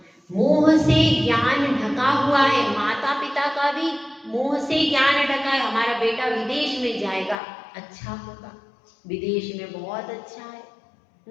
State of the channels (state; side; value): drops out; right; at 7.4 s